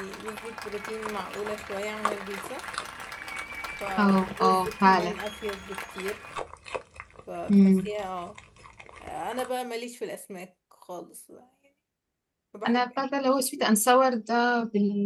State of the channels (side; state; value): both; identical; correlation 1.00